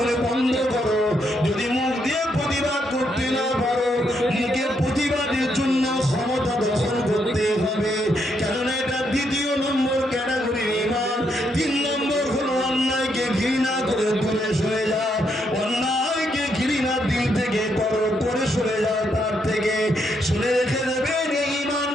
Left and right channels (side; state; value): both; normal; correlation 0.77